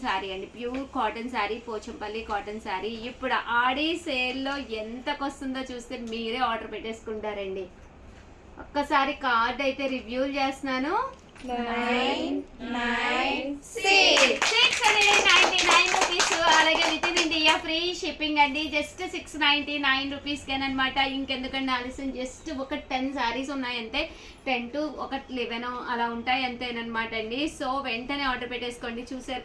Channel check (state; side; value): identical; both; correlation 1.00